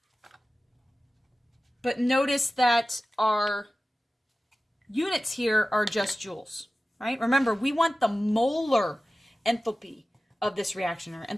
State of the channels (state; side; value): normal; both; correlation 0.95